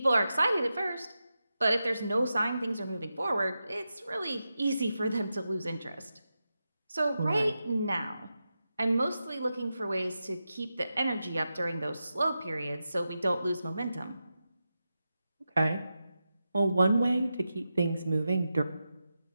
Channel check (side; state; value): both; inverted; correlation -0.90